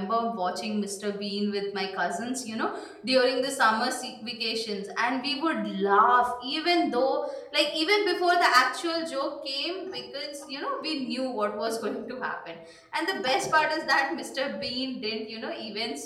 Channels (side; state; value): both; identical; correlation 1.00